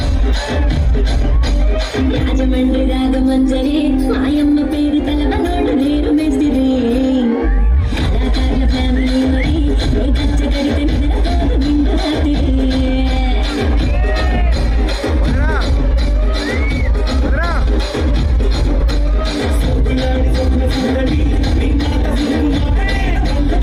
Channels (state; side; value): identical; both; correlation 1.00